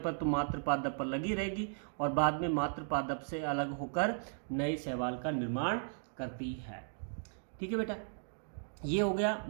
तो मात्र पादप पर लगी रहेगी और बाद में मात्र पादप से अलग होकर नए शैवाल का निर्माण करती है। ठीक है बेटा, ये हो गया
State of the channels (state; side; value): silent; left; digital silence